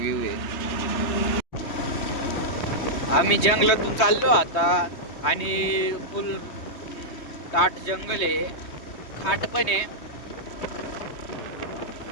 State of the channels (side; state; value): right; late; 3.2 ms